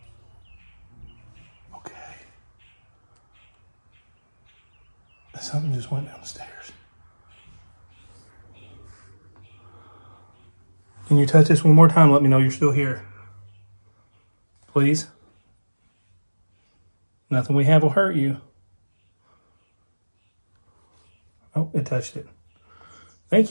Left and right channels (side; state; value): both; inverted; correlation -1.00